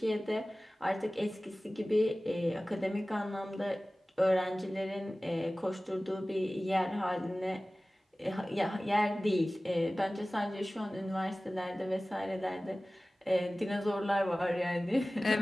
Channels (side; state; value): both; normal; correlation 0.97